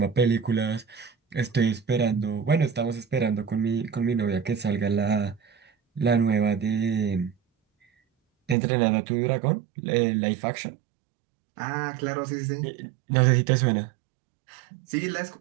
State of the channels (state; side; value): drops out; left; at 8.6 s